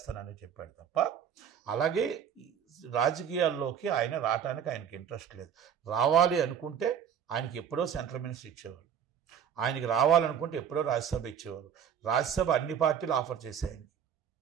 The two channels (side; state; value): left; quieter; 8.4 dB